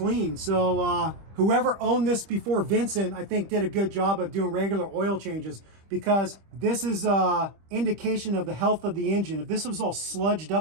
So whoever owned this before Vincent, I think did a good job of doing regular oil changes, because this is an indication of the health of the engine. If this was all sludged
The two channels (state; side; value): late; left; 25 ms